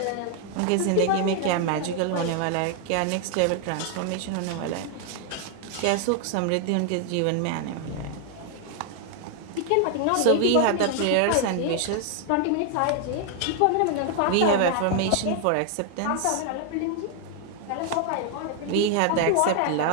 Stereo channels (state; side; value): different; both; correlation 0.00